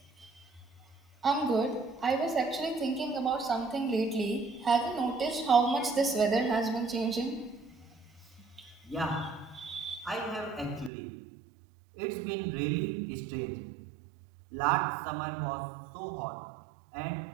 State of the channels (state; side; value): drops out; left; at 10.9 s